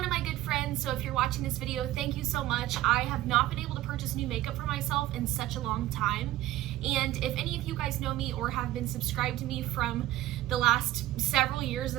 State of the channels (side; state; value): left; quieter; 15.2 dB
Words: of my good friends. So if you're watching this video, thank you so much. I have not been able to purchase new makeup for myself in such a long time, and if any of you guys know me or have been subscribed to me from the last several years